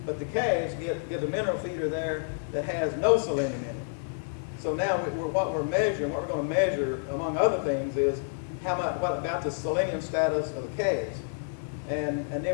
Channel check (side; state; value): right; silent; digital silence